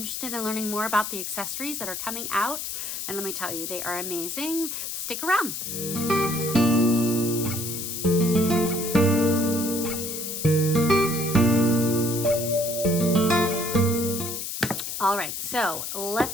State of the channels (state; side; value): noise; left; hiss, 5 dB below the sound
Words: in learning more about the accessories that are coming out, and let me tell you, they are amazing, stick around. All right, so